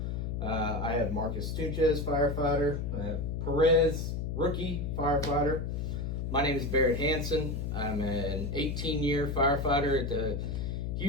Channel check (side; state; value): left; noise; hum, 2 dB below the sound